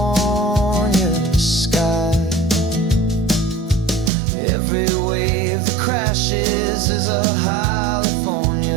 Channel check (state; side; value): drops out; left; at 4.1 s